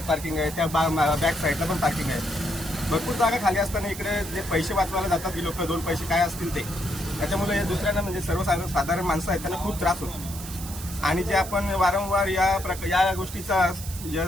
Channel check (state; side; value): noise; right; hiss, 12 dB below the sound